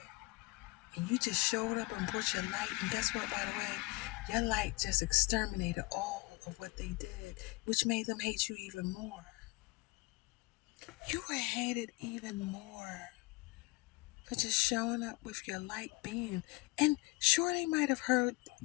And you just showed up and brought your light. And guess what, by the way? Your light just exterminated all of what they did, which made them hate you even more. You were hated even more for just showing up with your light beam. And sure, they might have heard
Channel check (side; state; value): right; quieter; 24.0 dB